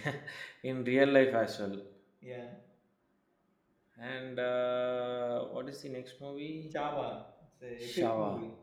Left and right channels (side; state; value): both; identical; correlation 1.00